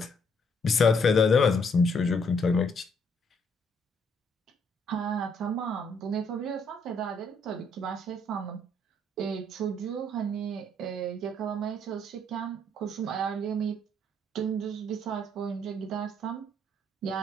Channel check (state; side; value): normal; both; correlation 0.69